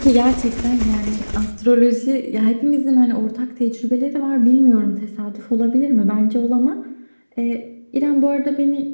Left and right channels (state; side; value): inverted; both; correlation -1.00